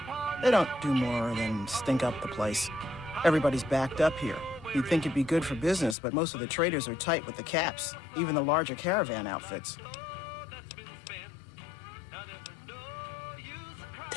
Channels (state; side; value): drops out; right; at 6.0 s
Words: they don't do more than stink up the place. Everybody's backed up here. You'd think it'd be good for business, but most of the traders are tight with the caps, even the larger caravan outfits.